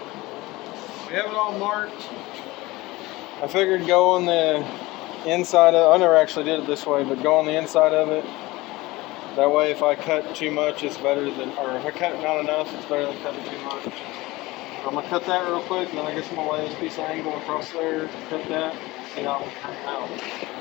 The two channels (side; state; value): right; quieter; 20.4 dB